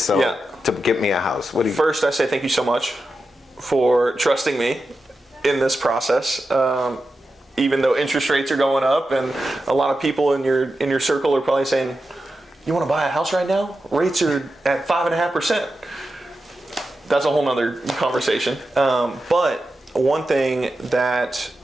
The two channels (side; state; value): both; normal; correlation 0.90